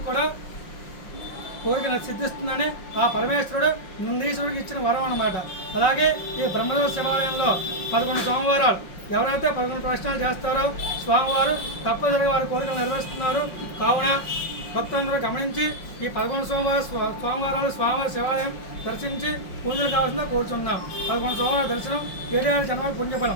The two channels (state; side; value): late; right; 5.6 ms